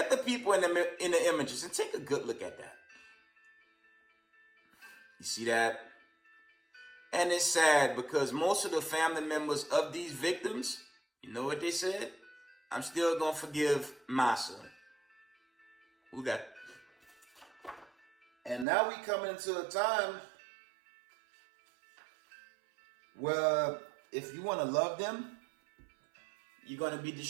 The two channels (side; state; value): left; drops out; at 18.7 s